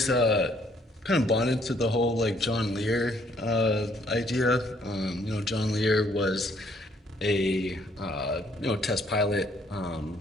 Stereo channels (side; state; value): both; normal; correlation 0.66